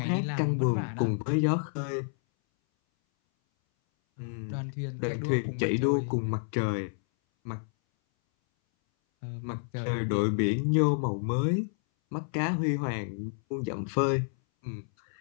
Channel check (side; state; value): right; silent; 58 dB below the other